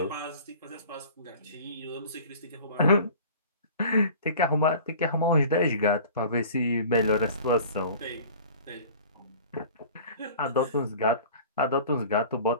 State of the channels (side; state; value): both; inverted; correlation -0.43